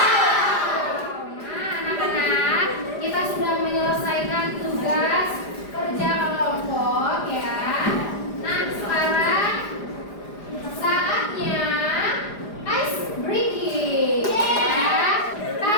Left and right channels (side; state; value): right; late; 4.9 ms